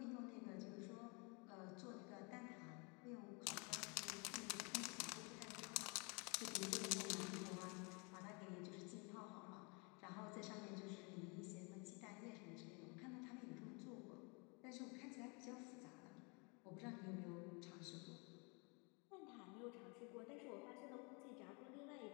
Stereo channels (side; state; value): right; quieter; 31.9 dB